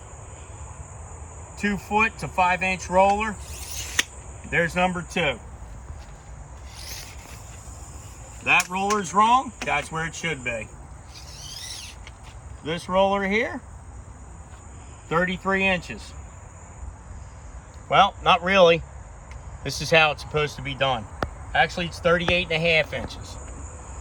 2 foot to 5 inch roller. There's number 2. That roller's wrong, that's where it should be. This roller here, 33 inches. Well, not really. This is how it's supposed to be done. Actually, it's 38.5 inches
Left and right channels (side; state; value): both; identical; correlation 1.00